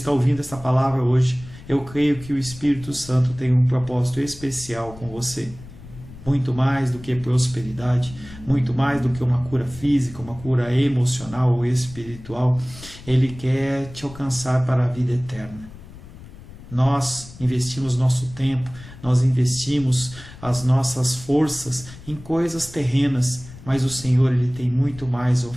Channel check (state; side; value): noise; left; rumble, 17 dB below the sound